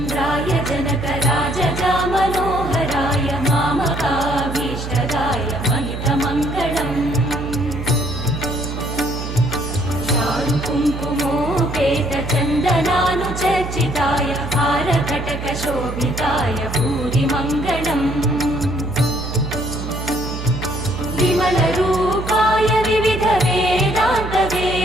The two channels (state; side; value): noise; right; hum, 7 dB below the sound